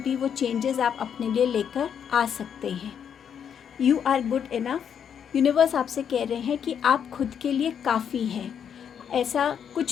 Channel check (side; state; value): right; quieter; 8.1 dB